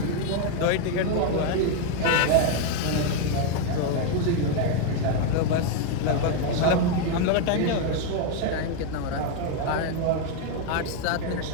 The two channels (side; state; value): both; different; correlation 0.01